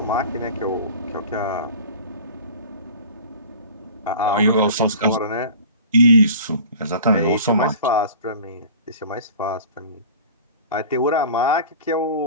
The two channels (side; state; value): both; inverted; correlation -0.40